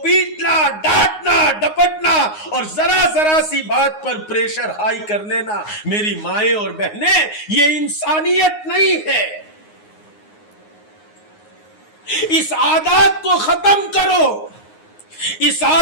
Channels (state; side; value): late; right; 9.6 ms